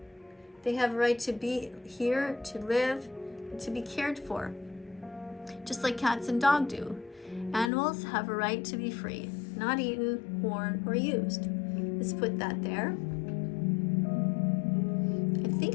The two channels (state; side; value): drops out; right; at 7.7 s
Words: They have a right to be here, to live, and to be cared for. Just like cats and dogs do. Animals have a right to be free, not eaten, worn, or used. Let's put that there. I think